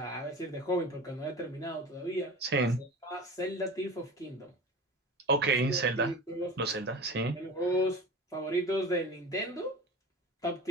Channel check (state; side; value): normal; both; correlation 0.33